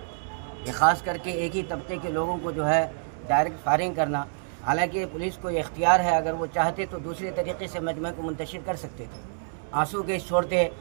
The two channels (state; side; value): silent; left; 60 dB below the other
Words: ये ख़ास करके एक ही तबके के लोगों को जो है डायरेक्ट फायरिंग करना। हालांकि पुलिस को ये इख्तियार है, अगर वो चाहते तो दूसरे तरीके से मजमे को मुंतशिर कर सकते थे। आंसू गैस छोड़ते